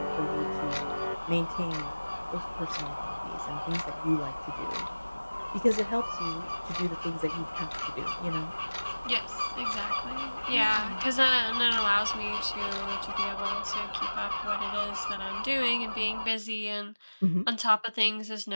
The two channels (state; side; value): inverted; both; correlation -1.00